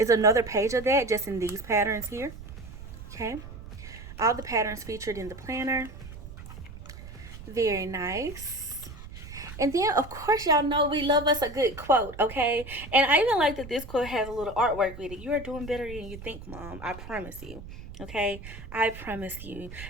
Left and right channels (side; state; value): right; noise; rumble, 13 dB below the sound